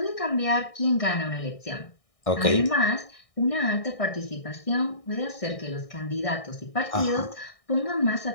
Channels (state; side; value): late; right; 1.6 ms